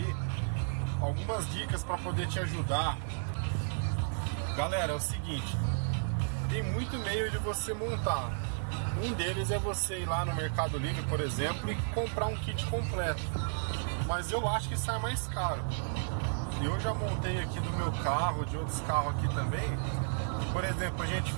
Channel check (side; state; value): left; silent; 56 dB below the other